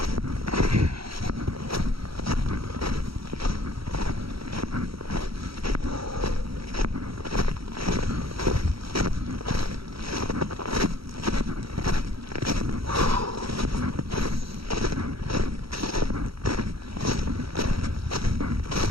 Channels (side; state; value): left; late; 0.75 ms